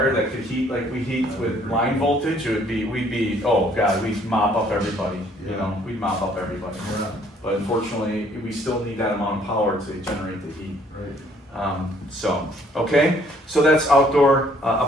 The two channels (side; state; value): both; normal; correlation 0.62